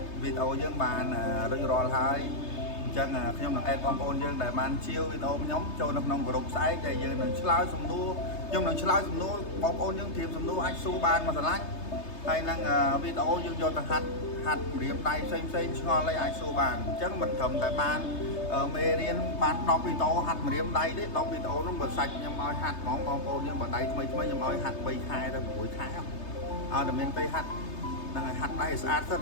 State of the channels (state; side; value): late; right; 3.3 ms